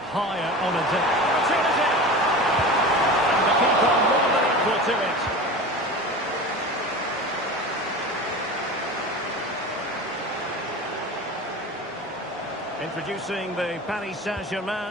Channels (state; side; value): normal; both; correlation 0.32